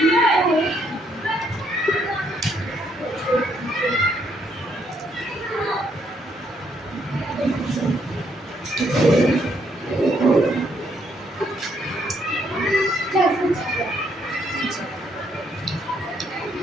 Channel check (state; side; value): normal; both; correlation 0.72